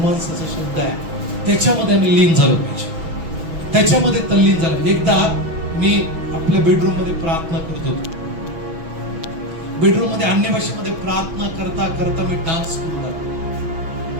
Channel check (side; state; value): left; late; 6.1 ms